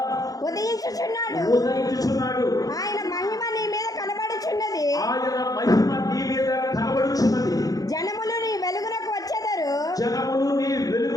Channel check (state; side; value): late; right; 0.18 ms